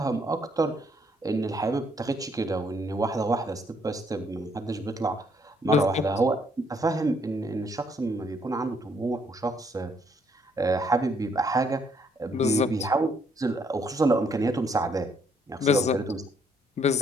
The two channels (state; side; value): normal; both; correlation 0.69